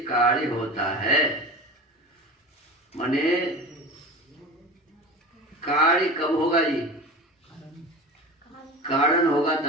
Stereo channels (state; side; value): normal; both; correlation 0.32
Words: कार्य होता है। माने कार्य कब होगा जी? कारण होगा